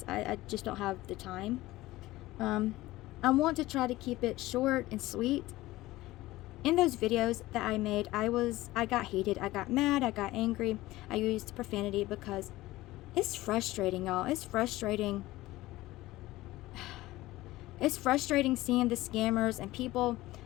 I just don't have the time. I want to try to keep it short and sweet. In those videos that I made, I got heated, I got mad, I got angry, I used profanity because it's frustrating, y'all. It's frustrating. It's frustrating seeing the scammers and people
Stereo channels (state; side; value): quieter; right; 17.7 dB